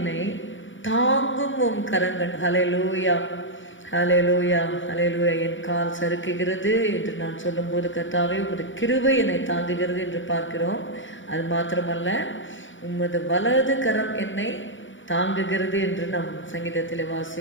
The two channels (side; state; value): right; late; 0.56 ms